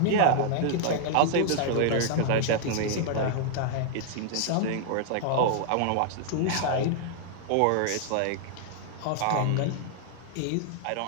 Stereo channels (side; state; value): both; different; correlation 0.00